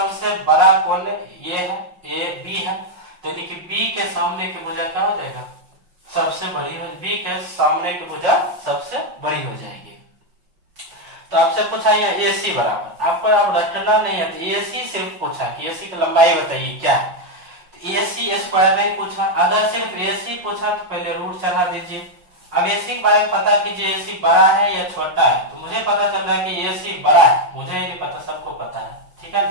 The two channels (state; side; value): late; left; 5.6 ms